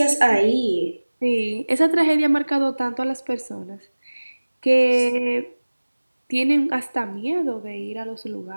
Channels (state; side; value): inverted; both; correlation -1.00